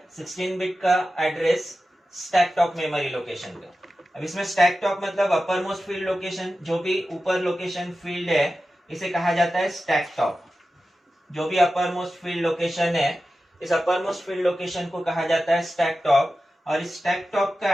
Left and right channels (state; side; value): normal; both; correlation 0.93